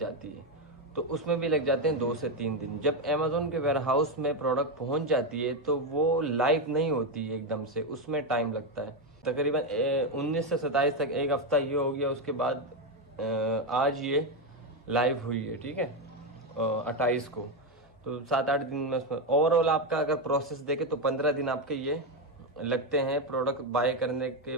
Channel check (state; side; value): normal; both; correlation 0.09